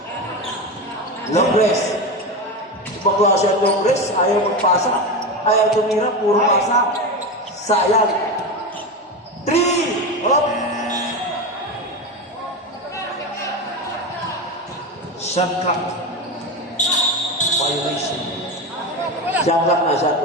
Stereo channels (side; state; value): both; normal; correlation 0.19